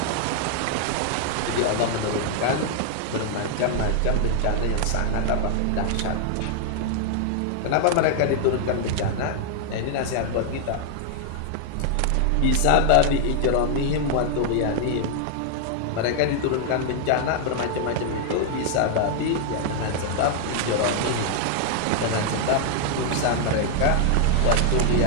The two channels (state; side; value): different; both; correlation 0.00